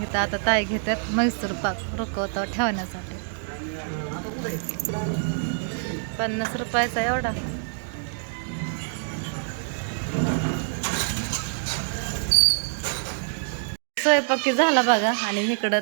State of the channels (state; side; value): silent; left; digital silence